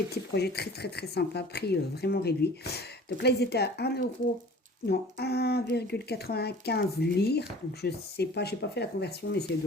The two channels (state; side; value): normal; both; correlation 0.45